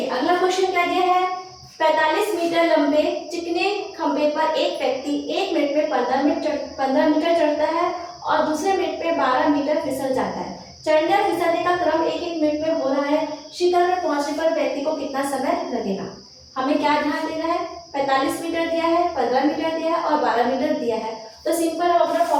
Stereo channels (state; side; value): identical; both; correlation 1.00